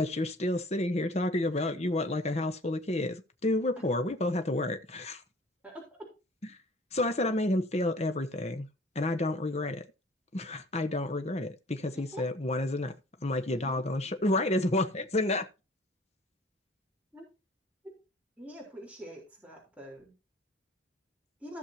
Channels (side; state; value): both; normal; correlation 0.51